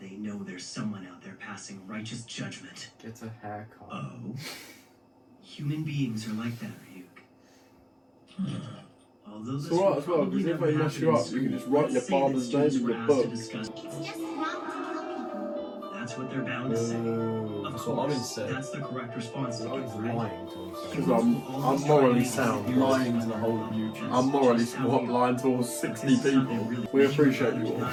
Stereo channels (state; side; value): identical; both; correlation 1.00